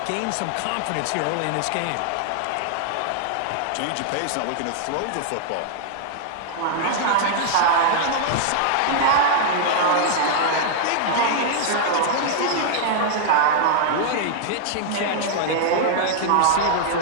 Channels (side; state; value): both; different; correlation -0.01